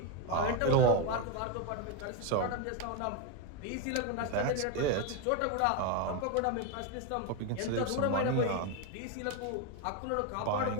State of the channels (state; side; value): different; both; correlation 0.02